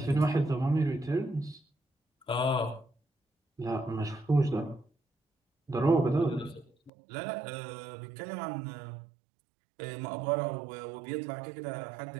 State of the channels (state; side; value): drops out; left; at 6.9 s